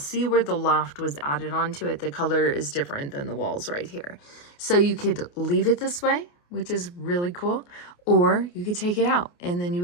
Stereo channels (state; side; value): late; right; 28 ms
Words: where the loft was added onto it. The color is different than the walls right here. So you could leave it this way, which is really cool, or you could take it out and then you